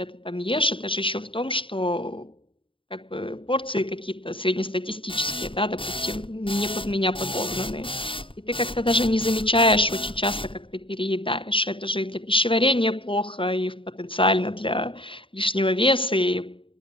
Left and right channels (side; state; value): right; late; 0.25 ms